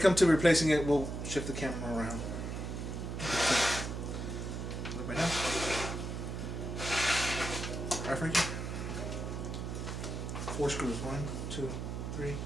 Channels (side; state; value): right; noise; hum, 5 dB below the sound